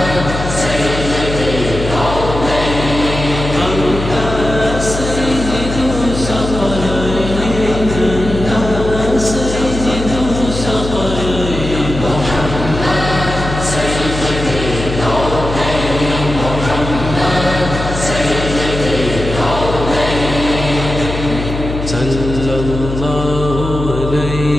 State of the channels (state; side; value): noise; left; hum, 6 dB below the sound